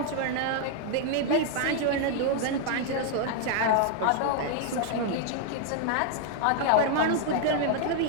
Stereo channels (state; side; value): different; both; correlation 0.00